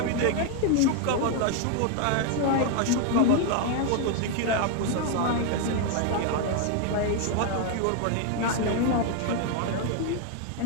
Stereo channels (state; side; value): different; both; correlation 0.01